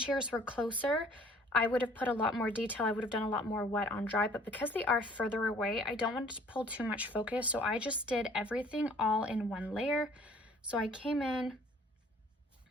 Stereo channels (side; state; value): both; normal; correlation 0.55